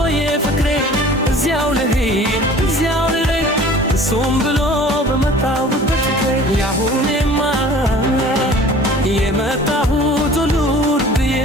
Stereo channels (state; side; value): normal; both; correlation 0.46